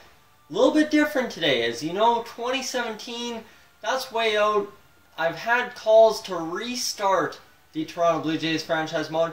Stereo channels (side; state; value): both; identical; correlation 1.00